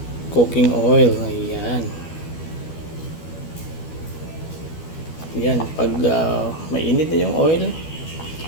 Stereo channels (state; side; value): late; right; 12 ms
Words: cooking oil. Ayan. Ayan, pag mainit na yung oil,